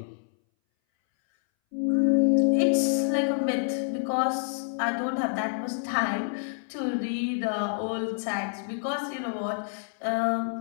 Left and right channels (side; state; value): right; silent; 60 dB below the other